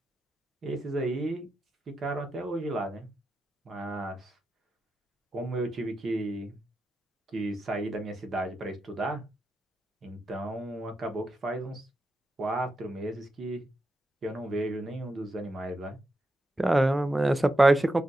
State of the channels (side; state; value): both; normal; correlation 0.87